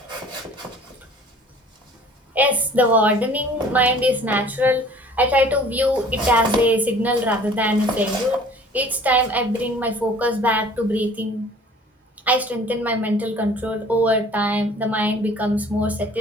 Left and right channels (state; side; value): normal; both; correlation 0.50